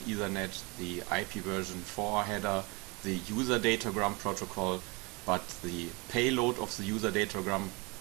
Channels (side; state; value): left; quieter; 27.6 dB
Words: Ethernet, the IP version 4 header, the user datagram protocol, but the payload of the user datagram